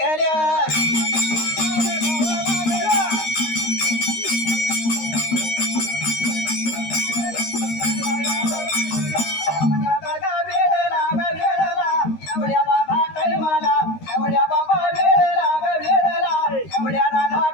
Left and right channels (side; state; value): right; late; 13 ms